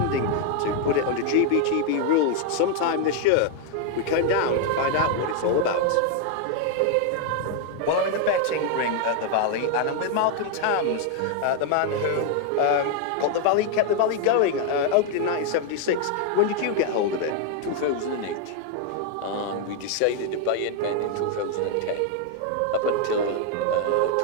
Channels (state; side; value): different; both; correlation 0.00